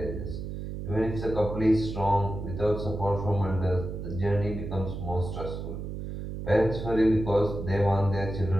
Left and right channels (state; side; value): noise; right; hum, 7 dB below the sound